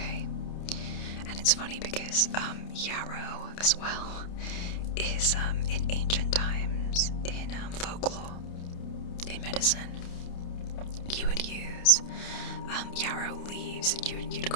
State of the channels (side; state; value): right; late; 29 ms